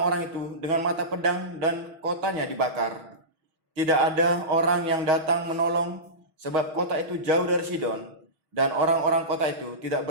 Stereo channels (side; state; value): left; late; 6.4 ms